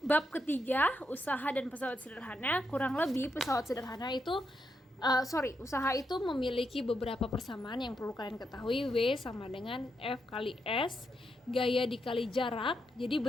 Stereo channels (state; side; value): normal; both; correlation 0.82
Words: ketiga, usaha dan pesawat sederhana? Kurang lebih pesawat sederhana itu usaha itu memiliki beberapa persamaan yang perlu kalian ketahui. W sama dengan F kali S, gaya dikali jarak. Jadi